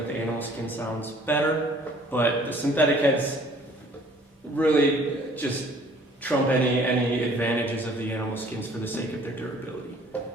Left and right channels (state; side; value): normal; both; correlation 0.55